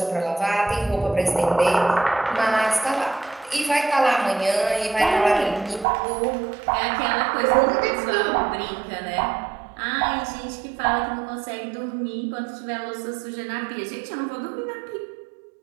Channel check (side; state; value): left; drops out; at 5.9 s